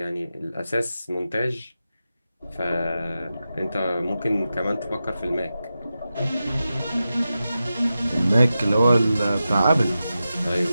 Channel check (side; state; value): both; inverted; correlation -0.92